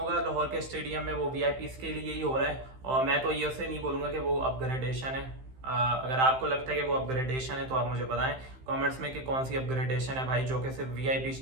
लाहौर के स्टेडियम में, वो वीआईपीज के लिए ही हो रहा है और मैं तो ये उसे नहीं बोलूँगा कि वो अपग्रेडेशन है। अगर आपको लगता है कि वो अपग्रेडेशन है तो आप मुझे बताएं कमेंट्स में कि कौन सी अपग्रेडेशन है भाई, जो कि सिर्फ वीआईपी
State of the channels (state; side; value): late; left; 15 ms